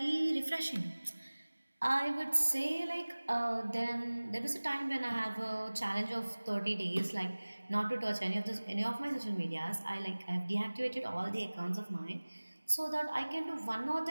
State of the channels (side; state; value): both; inverted; correlation -1.00